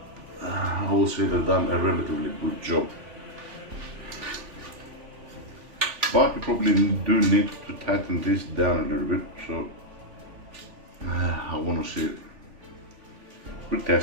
I would say they've done a relatively good job. But you probably do need to tighten this down a little bit, so I want to see it. We're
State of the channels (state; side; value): late; left; 3.5 ms